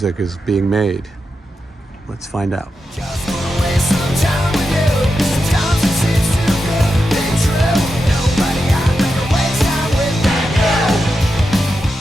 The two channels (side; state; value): both; normal; correlation 0.88